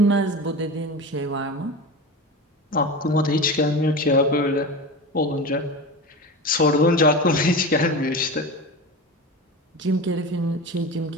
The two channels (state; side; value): normal; both; correlation 0.28